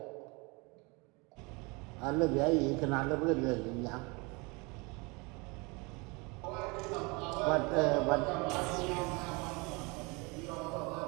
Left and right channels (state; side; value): quieter; left; 28.0 dB